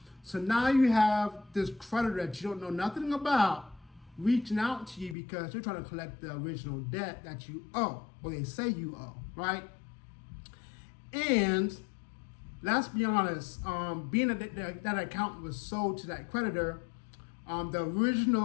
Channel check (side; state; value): right; drops out; at 5.2 s